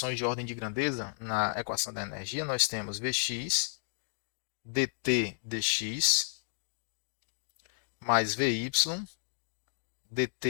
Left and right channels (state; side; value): silent; right; digital silence